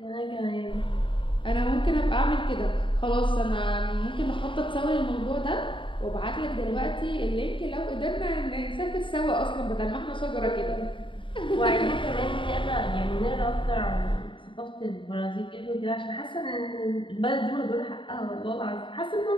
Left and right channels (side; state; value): right; late; 0.24 ms